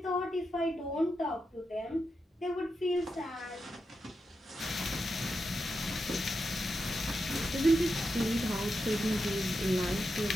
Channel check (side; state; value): both; normal; correlation 0.87